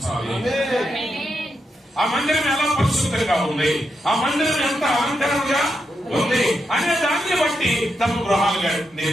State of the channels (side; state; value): both; normal; correlation 0.84